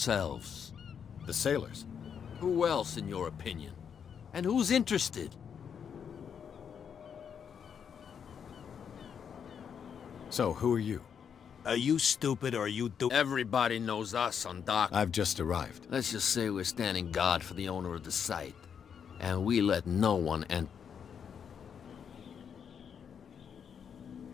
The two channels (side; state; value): right; quieter; 7.5 dB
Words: The sailors? Who else, in your opinion? And who's interested? So, who are you? Are you stupid or are you Everybody knows us on dock. I've just arrived. Let's just say we're standing guard for the owner of the site. And we let no one enter.